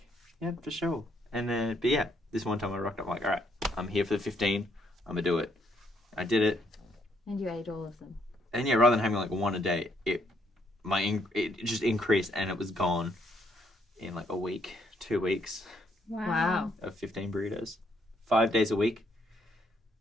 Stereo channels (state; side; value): normal; both; correlation 0.71